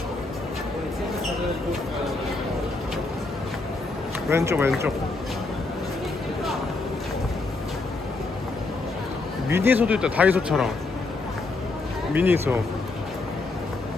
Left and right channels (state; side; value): quieter; right; 3.5 dB